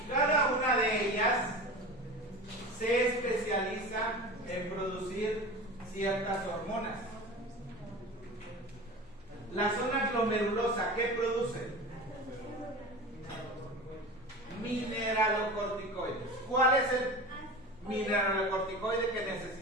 una de ellas se especializa en producir ciertas hormonas. La zona glomerulosa, ¿qué produce? Mineralocorticoides. ¿Cuál es el mineralocorticoide que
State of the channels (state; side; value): normal; both; correlation 0.32